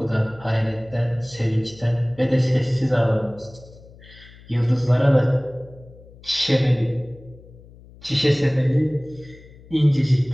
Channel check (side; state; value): left; noise; hum, 22 dB below the sound